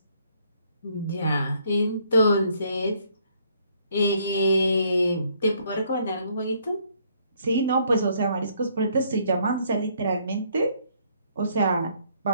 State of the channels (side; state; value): both; inverted; correlation -0.66